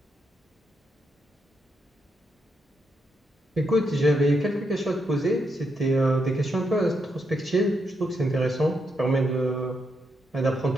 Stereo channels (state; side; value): normal; both; correlation 0.81